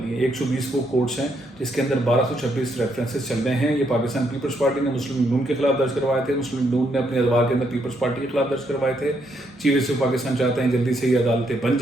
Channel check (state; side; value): normal; both; correlation 0.75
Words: ہیں. 120 وہ کوڈز ہیں جس کے اندر 1226 ریفرنسز چل رہے ہیں. یہ پاکستان پیپلز پارٹی نے مسلم لیگ نون کے خلاف درج کروائے تھے. مسلم لیگ نون نے اپنے ادوار کے اندر پیپلز پارٹی کے خلاف درج کروائے تھے. چیف وزیر پاکستان چاہتے ہیں جلدی سے یہ عدالتیں بن